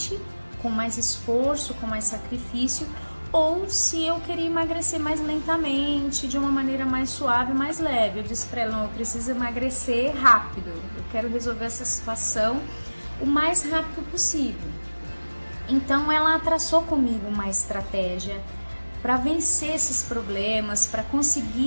com mais esforço, com mais sacrifício, ou se eu queria emagrecer mais lentamente, de uma maneira mais suave, mais leve. Eu disse para ela, não, eu preciso emagrecer rápido, eu quero resolver essa situação o mais rápido possível. Então ela traçou comigo uma estratégia para vencer esses problemas, para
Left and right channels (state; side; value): inverted; both; correlation -1.00